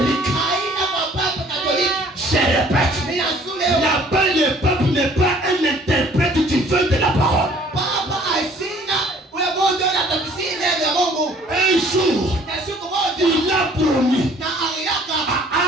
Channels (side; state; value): both; normal; correlation 0.56